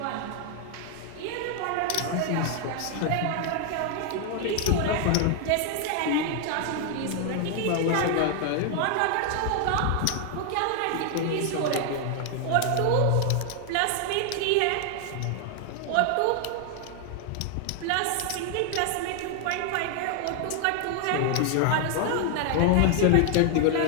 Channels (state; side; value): different; both; correlation 0.00